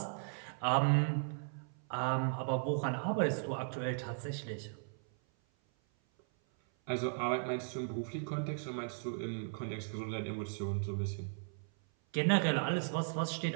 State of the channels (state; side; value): silent; left; 53 dB below the other